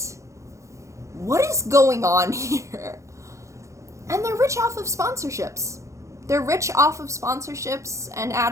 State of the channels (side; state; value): left; late; 0.15 ms